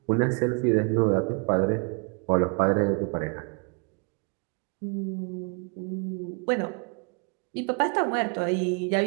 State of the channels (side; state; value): left; quieter; 36.2 dB